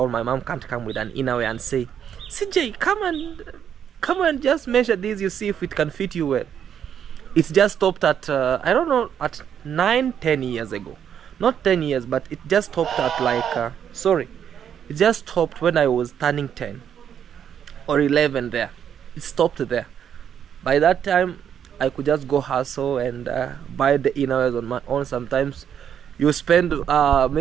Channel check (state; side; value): quieter; left; 8.7 dB